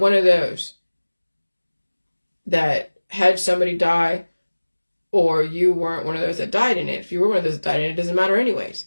of those that had somebody die, or you weren't one of those that died in it. If you were one of those that died in it, it doesn't matter anyways.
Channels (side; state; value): both; inverted; correlation -1.00